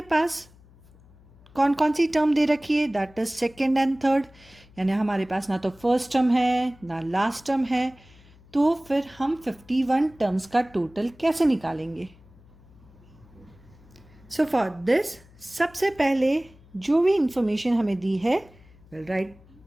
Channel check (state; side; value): noise; left; hum, 26 dB below the sound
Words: पास कौन कौन सी टर्म दे रखी है? That is second and third. यानी हमारे पास ना तो फर्स्ट टर्म है ना लास्ट टर्म है. तो फिर हम 51 टर्म्स का टोटल कैसे निकालेंगे? सो फॉर दिस सबसे पहले जो भी इंफॉर्मेशन हमें दी है, विल राइट